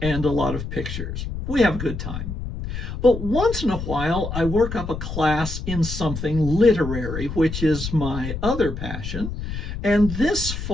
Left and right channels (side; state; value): left; noise; rumble, 6 dB below the sound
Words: and a lot of pictures. We have a good time. But once in a while, I work up a class in something literary, which is my other passion. And this